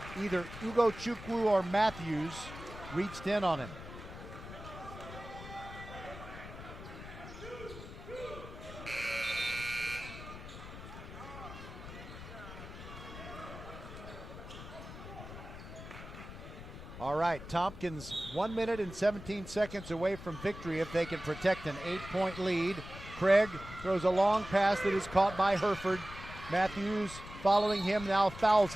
Either Ugo Chukwu or Matthews reached in on him. All right, Tompkins 1 minute and 17 seconds away from victory if they can protect an 8-point lead. Craig throws a long pass that is caught by Herford. Matthews following him now fouls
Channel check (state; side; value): noise; left; rumble, 13 dB below the sound